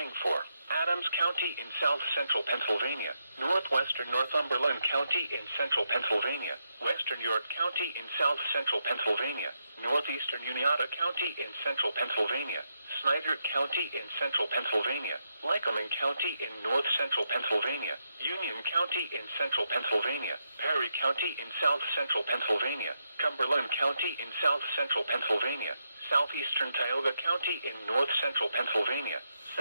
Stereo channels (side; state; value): both; inverted; correlation -0.82